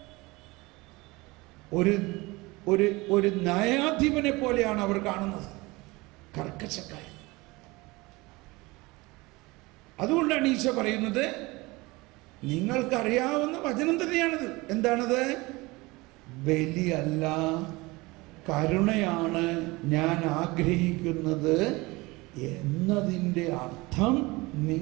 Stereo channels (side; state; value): left; quieter; 22.8 dB